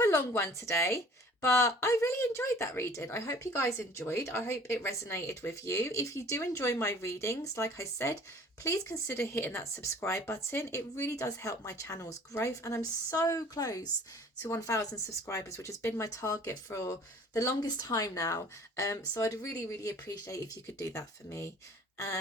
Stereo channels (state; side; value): normal; both; correlation 0.50